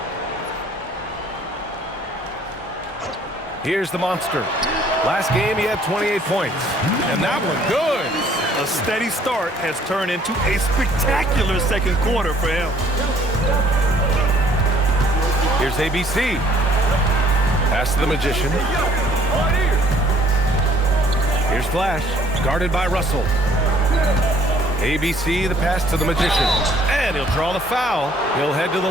Here's the monster. Last game, he had 28 points. And that one, good. A steady start has turned into a spectacular second quarter for him. Here's ABC. Pass to the magician. Here's Flash, guarded by Russell. ABC, the pass to the magician. And he'll draw the foul. He'll head to the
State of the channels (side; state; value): both; normal; correlation 0.60